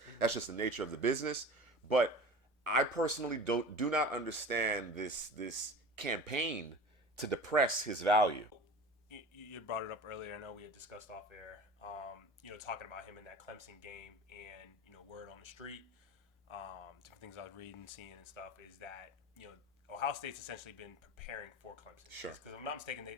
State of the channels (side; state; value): both; normal; correlation 0.36